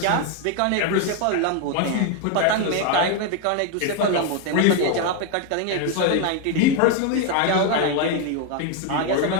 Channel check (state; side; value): different; both; correlation 0.01